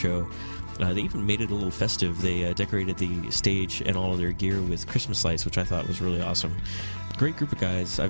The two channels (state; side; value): inverted; both; correlation -1.00